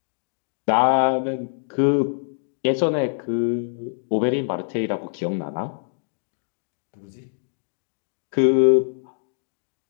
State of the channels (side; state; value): right; silent; digital silence